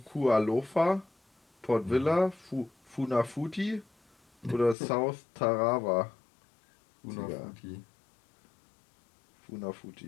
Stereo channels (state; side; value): drops out; right; at 4.8 s